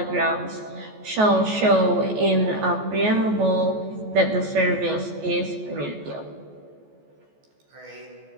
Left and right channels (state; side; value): late; left; 14 ms